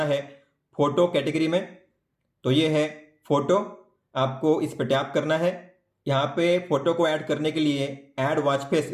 है फोटो कैटेगरी में, तो ये है फोटो, आपको इस पर टैप करना है। यहाँ पे फोटो को ऐड करने के लिए ऐड वॉच फेस,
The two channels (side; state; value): both; identical; correlation 1.00